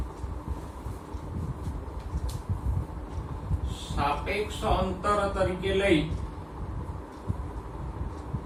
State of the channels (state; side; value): identical; both; correlation 1.00